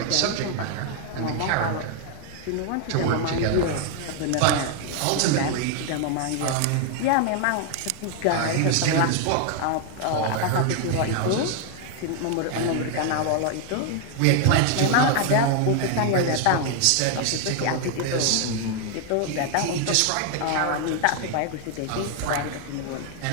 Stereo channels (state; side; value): different; both; correlation 0.00